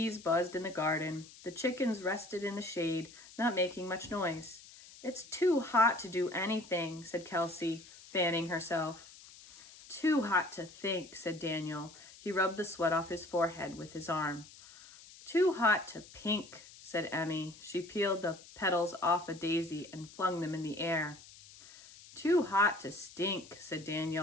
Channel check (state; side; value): noise; left; hiss, 20 dB below the sound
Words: buzzed in the garden. The chickens rested in the shade, not making much noise. "It's too hot to do anything," said Kelsey, fanning herself. "Too hot to think," said Daniel. He rubbed the sweat off his forehead with his arm. "Too hot to pink," said Emmy. She peeled the petals off a daisy and flung them in the air. "Too hot to stink," said